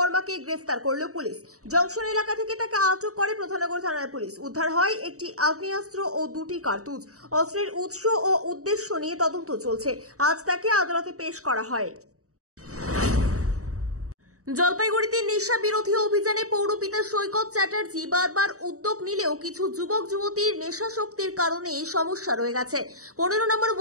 গ্রেফতার করল পুলিশ। জংশন এলাকা থেকে তাকে আটক করে প্রধাননগর থানার পুলিশ। উদ্ধার হয় একটি আগ্নেয়াস্ত্র ও 2টি কার্তুজ। অস্ত্রের উৎস ও উদ্দেশ্য নিয়ে তদন্ত চলছে। আজ তাকে আদালতে পেশ করা হয়। জলপাইগুড়িতে নেশা বিরোধী অভিযানে পৌরপিতা সৈকত চ্যাটার্জি বারবার উদ্যোগ নিলেও কিছু যুবক যুবতীর নেশাশক্তির কারণে সমস্যা রয়ে গেছে। 15 নম্বর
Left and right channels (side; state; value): left; late; 0.65 ms